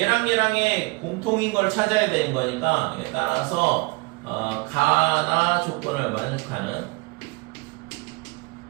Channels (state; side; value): quieter; left; 27.4 dB